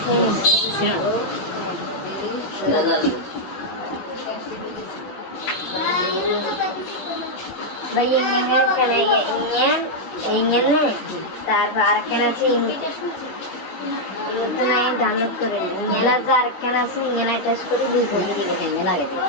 ছিল भाई ये क्या ना ये ने तार आरकन আছে তো নাই ডাউনলোড করে ইংলা যে আরকন আছে ইংলা টেস্ট করে দুই কোটি দিবে এনে না গেছে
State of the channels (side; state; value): right; late; 17 ms